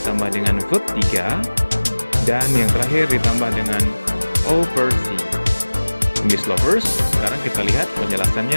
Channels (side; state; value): both; inverted; correlation -1.00